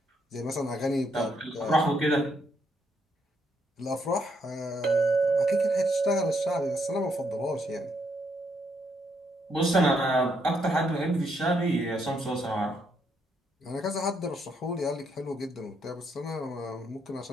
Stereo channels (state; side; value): normal; both; correlation 0.75